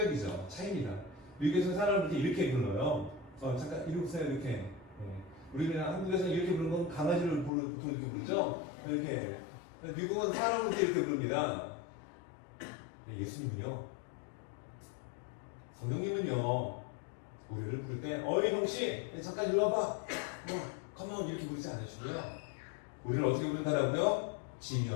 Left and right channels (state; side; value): drops out; right; at 7.5 s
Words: 차이입니다. 미국에서는 사람을 이렇게 불러요. 잠깐 이리 오세요. 이렇게. 네. 우리는 한국에서는 이렇게 부르는 건 강아지를 보통 이렇게 부르죠. 이렇게. 미국은 사람을 이렇게 부릅니다. 예수님은요. 성령님은요. 우리를 부를 때 어이 형씨 잠깐 이리 와봐. 가만 이렇게 부르지 않으시고요. 우리를 어떻게 부른다라고요?